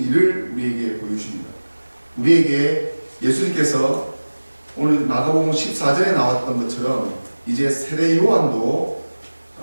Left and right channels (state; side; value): inverted; both; correlation -1.00